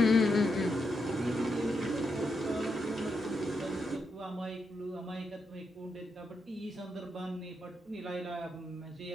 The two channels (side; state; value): both; normal; correlation 0.82